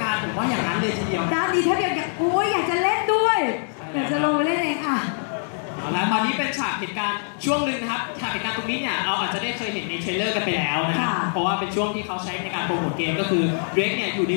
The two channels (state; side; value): silent; right; 62 dB below the other